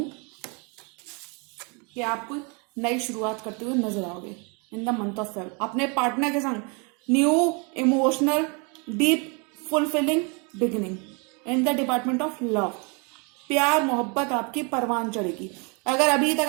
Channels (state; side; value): quieter; left; 33.2 dB